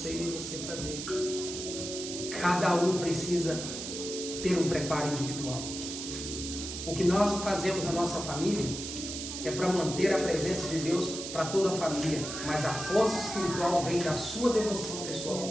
e nem você para ver. Cada um precisa ter um preparo individual. O que nós fazemos na nossa família é para manter a presença de Deus para toda a família, mas a força espiritual vem da sua devoção pessoal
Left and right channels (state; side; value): noise; right; hiss, 7 dB below the sound